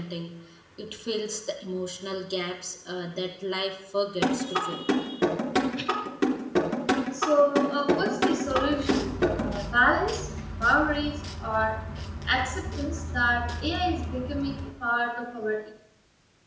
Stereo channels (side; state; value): both; identical; correlation 1.00